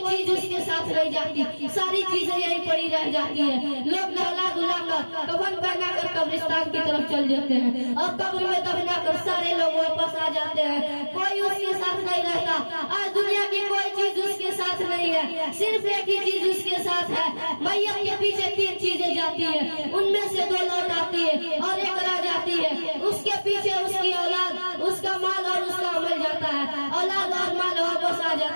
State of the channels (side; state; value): both; inverted; correlation -1.00